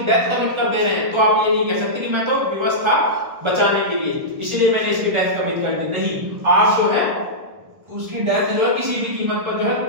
डेथ कमिट कर दे रहे हैं, तो आप ये नहीं कह सकते कि मैं तो विवश था बचाने के लिए इसलिए मैंने इसकी डेथ कमिट कर दी। नहीं, आप जो है उसकी डेथ जो है किसी भी कीमत पर जो है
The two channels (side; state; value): left; late; 1.2 ms